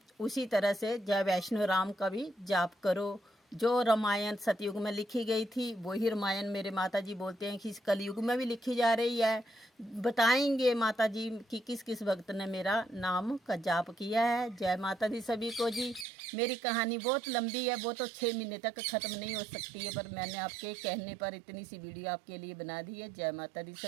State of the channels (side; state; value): left; drops out; at 16.1 s